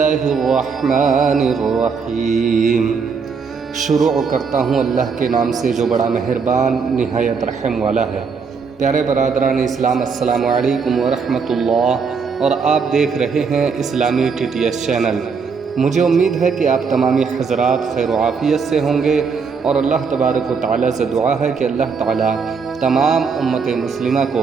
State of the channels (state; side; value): quieter; left; 5.5 dB